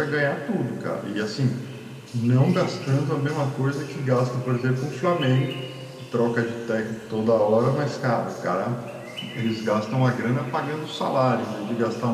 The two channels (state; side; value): identical; both; correlation 1.00